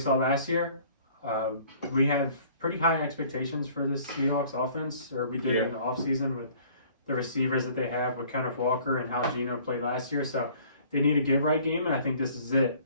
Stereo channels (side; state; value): both; inverted; correlation -0.54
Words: last year. We have pretty high expectations for this Seahawks offense, or we did in the offseason with the receivers that they have with Kenneth Walker and how Geno played last year. So they need a get-right game, and I think this is it.